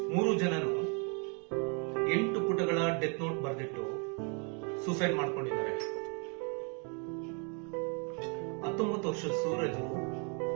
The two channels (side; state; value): left; quieter; 37.2 dB